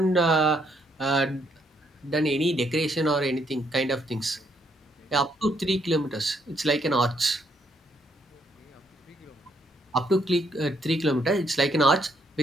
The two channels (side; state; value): both; normal; correlation 0.72